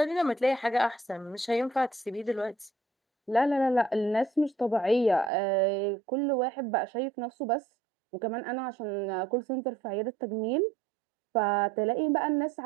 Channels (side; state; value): left; drops out; at 5.3 s